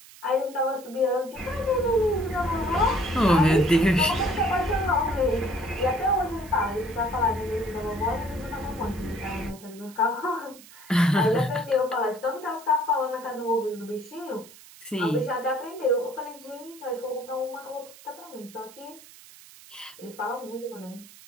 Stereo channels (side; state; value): right; noise; hiss, 20 dB below the sound